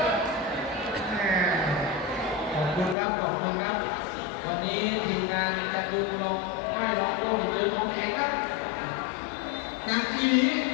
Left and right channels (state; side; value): drops out; right; at 3.0 s